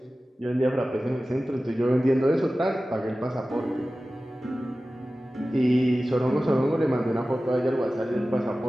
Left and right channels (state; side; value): normal; both; correlation 0.96